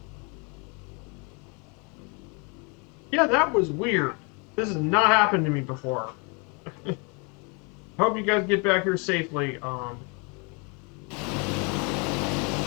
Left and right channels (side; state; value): right; quieter; 32.9 dB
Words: Yeah, that was weird. This has not happened to me before. Hope you guys get back here safely.